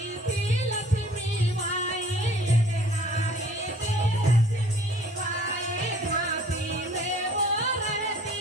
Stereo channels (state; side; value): normal; both; correlation 0.53